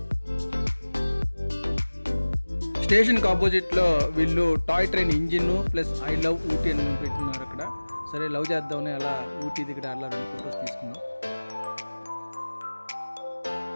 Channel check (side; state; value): both; inverted; correlation -1.00